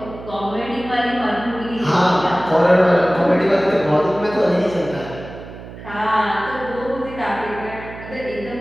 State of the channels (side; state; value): right; noise; hum, 14 dB below the sound